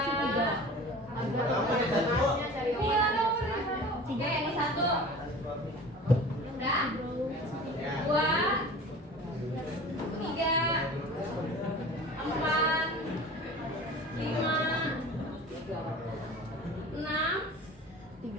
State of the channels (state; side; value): normal; both; correlation 0.40